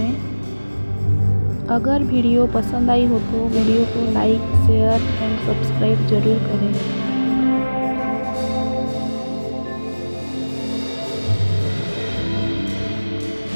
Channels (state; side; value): inverted; both; correlation -1.00